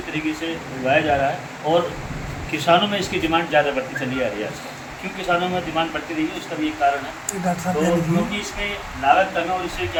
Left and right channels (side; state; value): both; identical; correlation 1.00